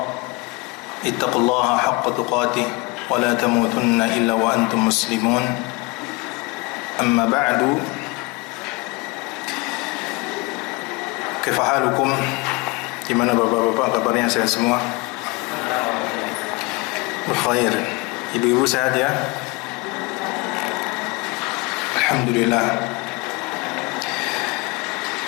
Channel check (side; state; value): right; quieter; 26.0 dB